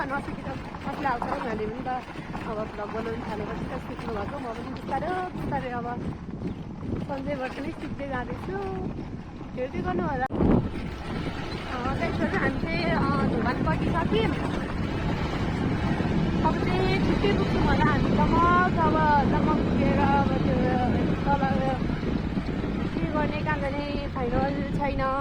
नसिकेर कसले आउँछ उहाँले पनि त अब भ्लग बनाउनु थालेपछि त सिक्नु भएको। म पनि बिस्तारै बिस्तारै अब सन्जयबाट नै सिक्दै जाँदैछु। हेर्दै गर्नु होला। त्यसपछि हामी चाहिँ धुमान बसिसक्यौँ। अब चाहिँ छिट्टै पुग्छौँ होला हामीसम्म। अब पुगेर अब त्यो तल के गर्ने कहाँ जाने फाइनल छैन।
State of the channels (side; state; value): both; identical; correlation 1.00